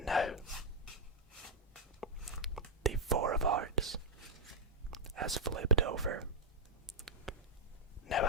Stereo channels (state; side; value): normal; both; correlation -0.04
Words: now now the four of hearts has flipped over. Now